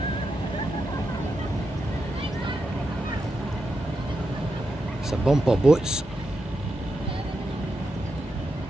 It's a bumper boats.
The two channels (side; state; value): both; normal; correlation 0.86